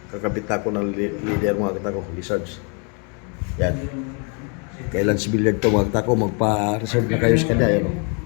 Kakabit ako ng leader mga katako, Lizards. Yan. Kay Lance Billiard to mga katako, magpa-reserve na kayo sa kanya. Yan, o.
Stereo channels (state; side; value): quieter; right; 36.5 dB